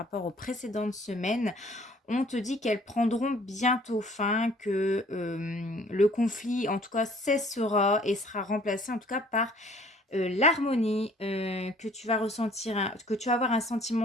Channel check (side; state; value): both; normal; correlation 0.56